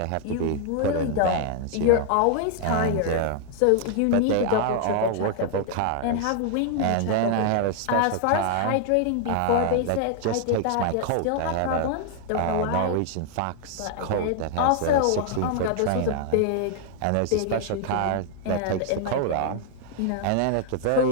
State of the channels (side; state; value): both; different; correlation 0.00